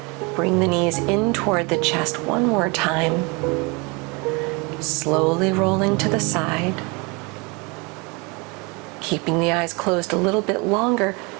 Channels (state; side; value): quieter; left; 28.9 dB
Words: Bring the knees in toward the chest one more time. Slowly rolling to the side. Keeping the eyes closed a little bit longer,